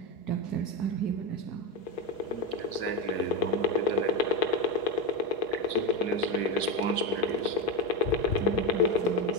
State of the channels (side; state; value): right; late; 4.6 ms